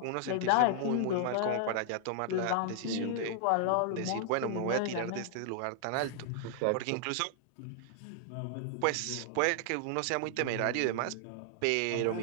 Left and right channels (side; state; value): both; different; correlation 0.00